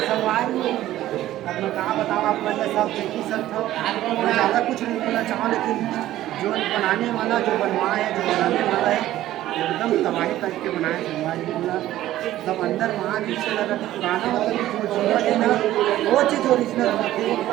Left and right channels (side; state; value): left; quieter; 14.2 dB